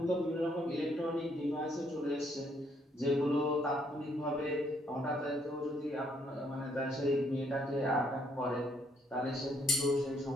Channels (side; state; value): both; normal; correlation 0.69